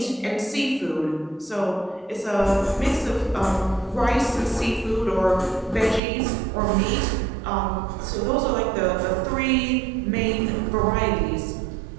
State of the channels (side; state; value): left; drops out; at 6.0 s